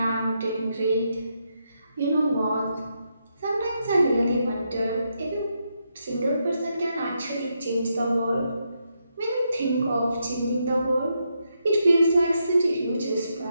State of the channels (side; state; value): both; inverted; correlation -0.81